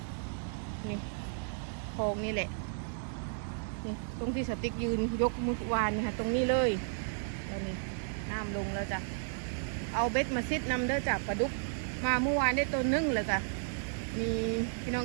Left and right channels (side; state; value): left; silent; digital silence